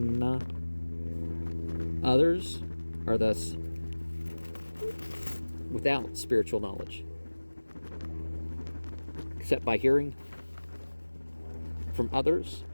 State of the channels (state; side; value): inverted; both; correlation -1.00